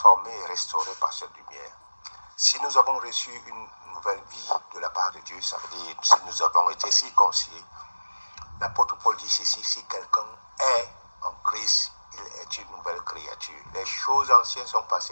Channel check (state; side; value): inverted; both; correlation -1.00